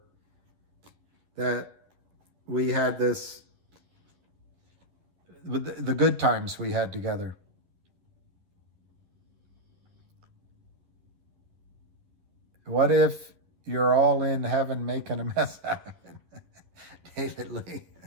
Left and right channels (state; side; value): late; left; 11 ms